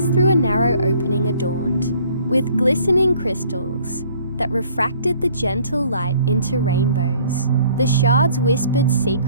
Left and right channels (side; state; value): both; inverted; correlation -0.58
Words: through a narrow opening adorned with glistening crystals that refracted the gentle light into rainbows. The shards whispered